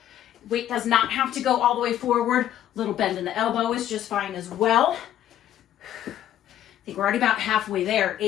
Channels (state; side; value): quieter; right; 11.6 dB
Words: Weight does not have to go all the way forward. Little bend in the elbow is just fine as well. I think we're already about halfway there.